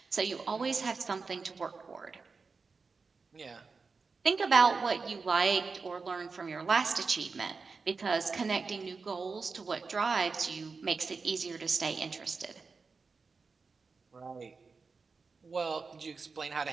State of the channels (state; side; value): quieter; left; 4.6 dB